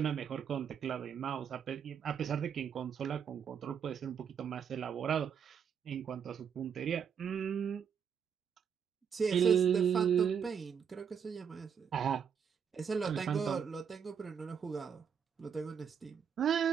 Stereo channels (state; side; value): quieter; left; 7.4 dB